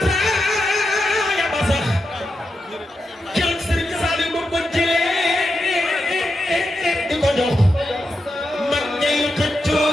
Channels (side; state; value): both; normal; correlation 0.87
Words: ba sax keroog Sëriñ Saliou ba ko jëlee di ko jox